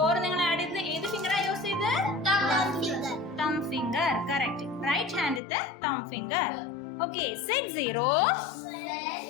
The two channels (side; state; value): right; drops out; at 5.4 s